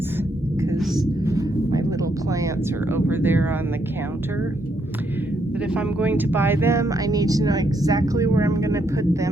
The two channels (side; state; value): both; normal; correlation 0.75